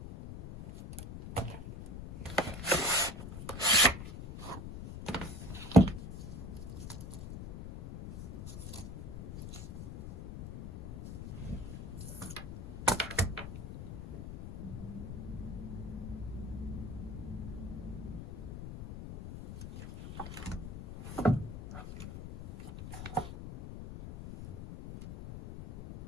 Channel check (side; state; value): left; noise; rumble, 9 dB below the sound